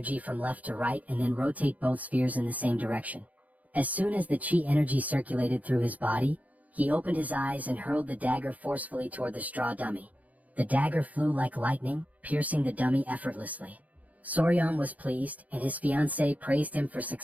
from left to right and then rotate both spheres in the same direction. As soon as the chi energy circulated through his body, he opened his eyes and hurled the dagger forcefully toward the straw dummy. The dagger flew like lightning, piercing the dummy effortlessly. Soryang was pleased, and his fiancée praised him for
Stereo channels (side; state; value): left; late; 0.074 ms